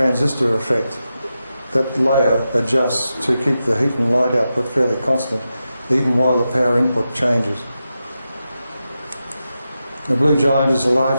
effect. That layer adjusts to keep the heat and light output fairly constant, even while the power input changes. The blue giant is a large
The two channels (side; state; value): both; inverted; correlation -0.90